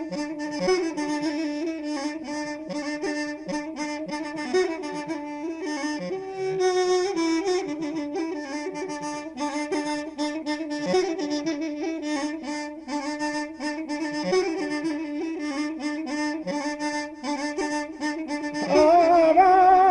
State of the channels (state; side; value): identical; both; correlation 1.00